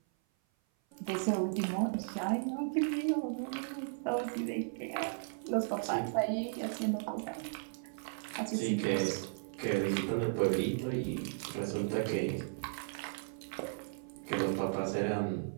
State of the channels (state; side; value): silent; left; 54 dB below the other